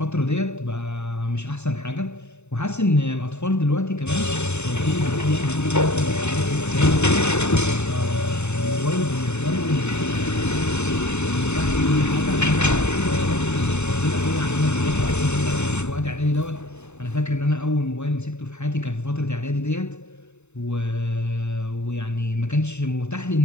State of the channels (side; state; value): right; late; 0.82 ms